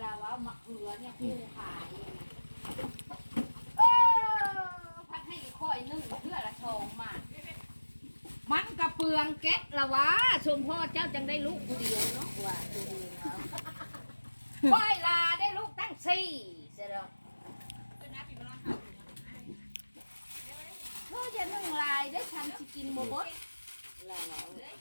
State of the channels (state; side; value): inverted; both; correlation -1.00